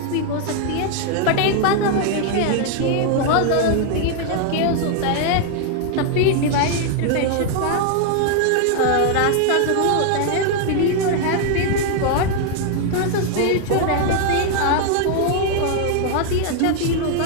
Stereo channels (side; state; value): both; different; correlation 0.00